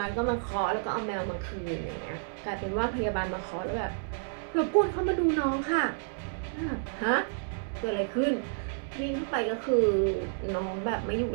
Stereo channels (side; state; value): left; silent; 58 dB below the other